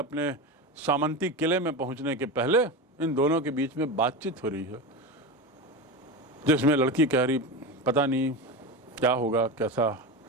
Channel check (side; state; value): both; normal; correlation 0.21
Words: सामंती किले में पहुंचने के पहले इन दोनों के बीच में बातचीत हो रही है, जिसमें लड़की कह रही, पता नहीं क्या होगा, कैसा.